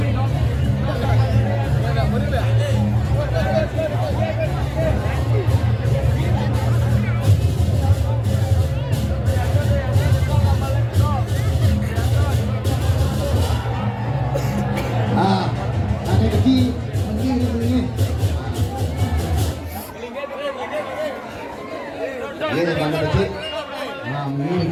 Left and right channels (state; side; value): identical; both; correlation 1.00